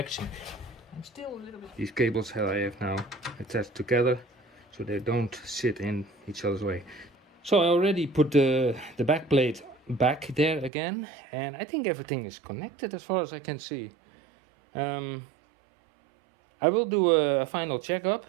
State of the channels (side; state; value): left; drops out; at 10.7 s